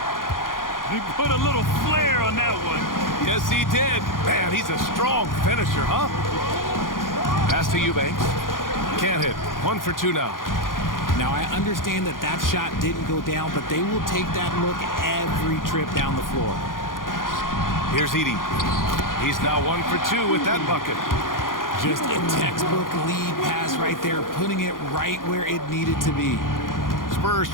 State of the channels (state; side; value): late; right; 0.90 ms